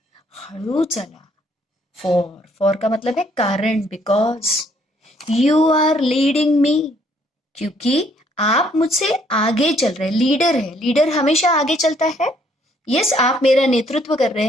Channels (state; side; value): normal; both; correlation 0.66